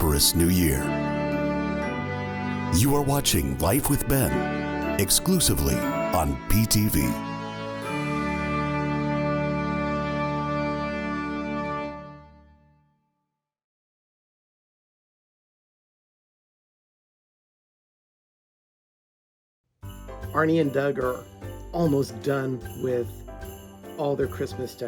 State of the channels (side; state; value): both; identical; correlation 1.00